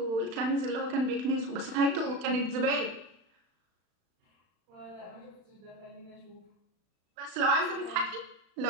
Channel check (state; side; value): late; left; 35 ms